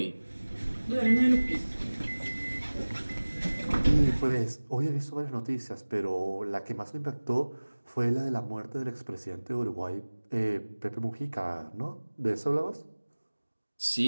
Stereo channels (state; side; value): inverted; both; correlation -1.00